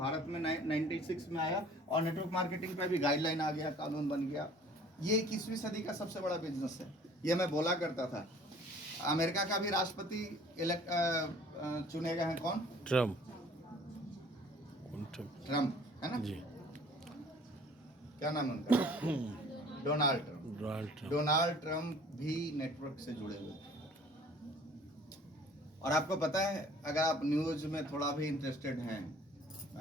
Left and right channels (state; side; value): normal; both; correlation 0.52